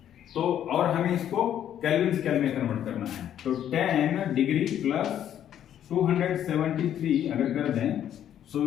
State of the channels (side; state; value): right; quieter; 10.4 dB